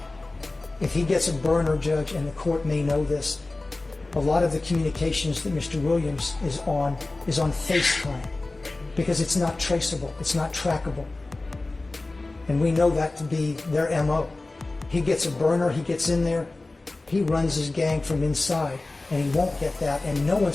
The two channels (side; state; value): right; quieter; 3.1 dB